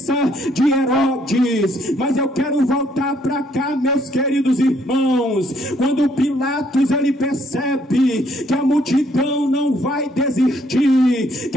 de Herodes. Mas eu quero voltar para cá, meus queridos irmãos. Quando Pilatos ele percebe que a multidão não vai desistir,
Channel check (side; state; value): both; normal; correlation 0.68